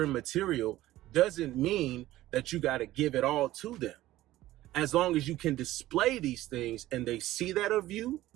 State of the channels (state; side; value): quieter; left; 15.6 dB